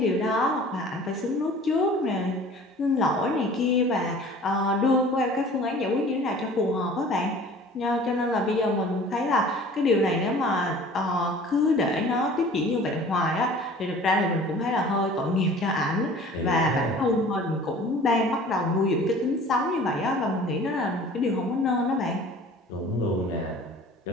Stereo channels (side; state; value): both; normal; correlation 0.46